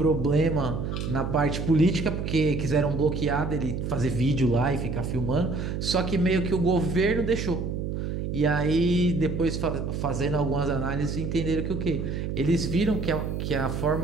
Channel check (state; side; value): noise; right; hum, 3 dB below the sound